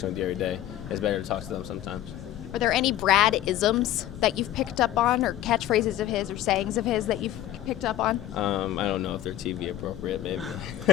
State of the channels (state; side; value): quieter; right; 13.2 dB